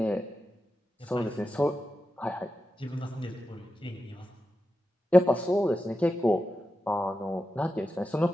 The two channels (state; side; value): normal; both; correlation 0.90